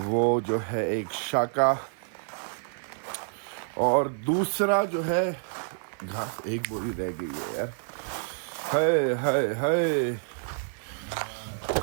जो है एक शाका और दूसरा जो है घास। एक बोरी रह गई है यार। हाय हाय हाय।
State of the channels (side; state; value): left; silent; 56 dB below the other